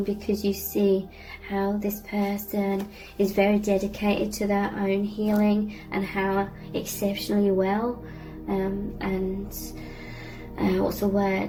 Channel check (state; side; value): identical; both; correlation 1.00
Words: because you see how this person is very dedicated to their own healing and how exceptionally well